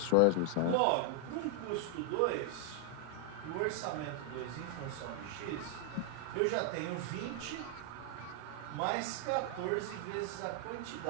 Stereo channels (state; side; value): different; both; correlation 0.00